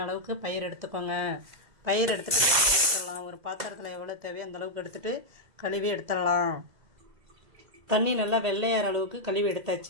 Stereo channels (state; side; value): late; left; 2.0 ms